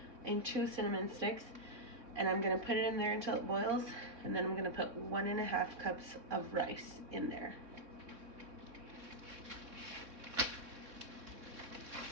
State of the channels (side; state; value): left; late; 3.6 ms